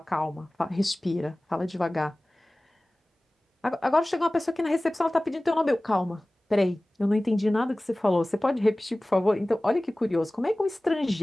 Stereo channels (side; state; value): both; normal; correlation 0.98